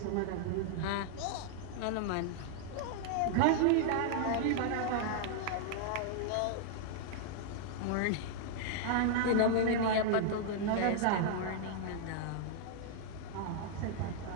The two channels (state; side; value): different; both; correlation -0.01